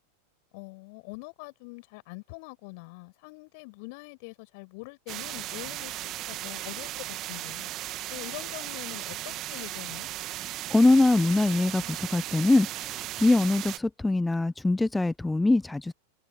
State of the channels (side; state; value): both; normal; correlation 0.93